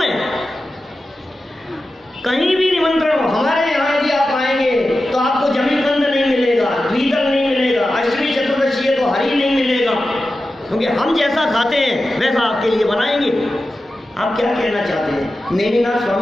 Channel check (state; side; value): normal; both; correlation 0.93